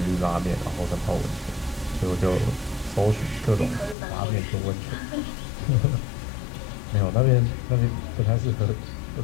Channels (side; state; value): right; drops out; at 4.0 s